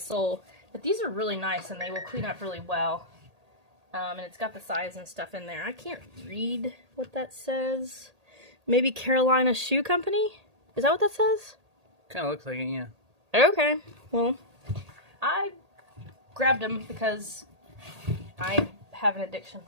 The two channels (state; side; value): late; left; 1.8 ms